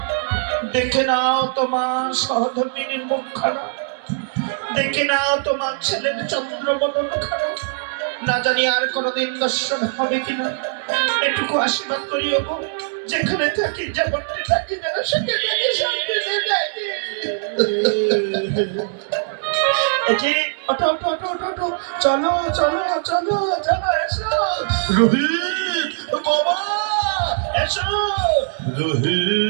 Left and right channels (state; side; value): silent; left; digital silence